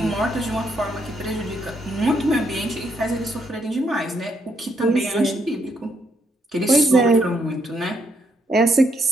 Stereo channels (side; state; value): both; normal; correlation 0.75